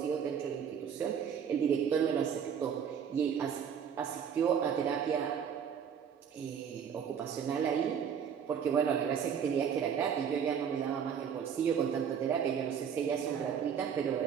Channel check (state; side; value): quieter; left; 7.7 dB